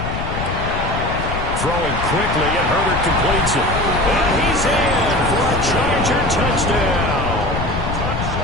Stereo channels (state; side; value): noise; left; rumble, 5 dB below the sound